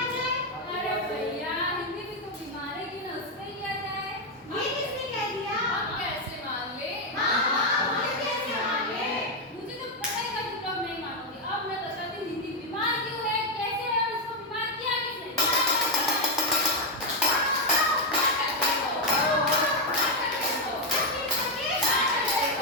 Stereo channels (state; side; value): normal; both; correlation 0.04